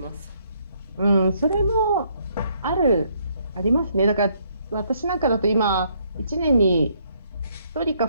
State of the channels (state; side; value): inverted; both; correlation -0.69